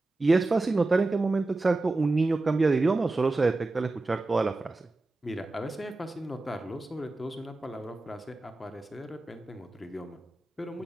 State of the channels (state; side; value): quieter; left; 3.1 dB